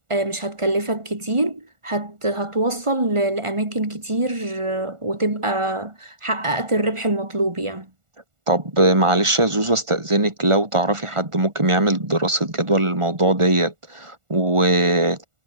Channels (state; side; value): late; left; 1.4 ms